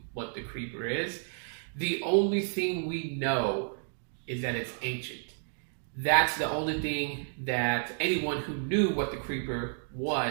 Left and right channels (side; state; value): left; silent; digital silence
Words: what the Creeper is. The only thing we know is that it's ancient. That's the only thing that anyone who knew what the Creeper